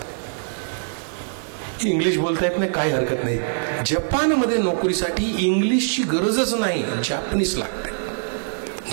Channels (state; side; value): silent; left; digital silence